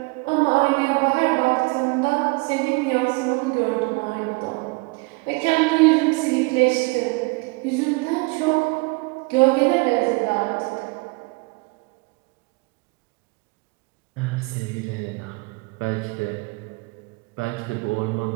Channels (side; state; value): left; quieter; 27.7 dB